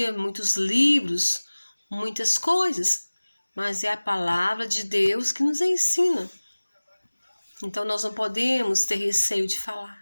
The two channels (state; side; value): inverted; both; correlation -1.00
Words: muitos livros, muitas coisas, mas é a palavra de Deus que nos ensina. Então nós não podemos ter receio de